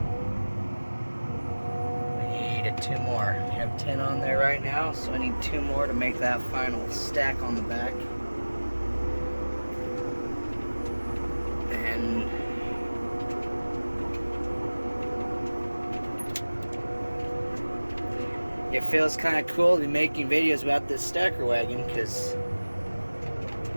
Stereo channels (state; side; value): inverted; both; correlation -1.00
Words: I need 2 more. I have 10 on there right now, so I need 2 more to make that final stack on the back. And it feels kind of cool to be making videos about this stacker wagon, because